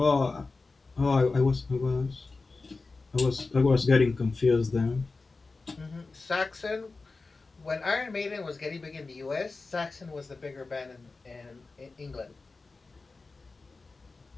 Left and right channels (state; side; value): quieter; right; 3.8 dB